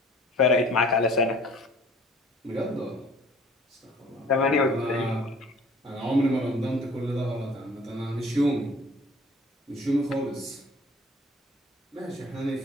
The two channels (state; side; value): normal; both; correlation 0.51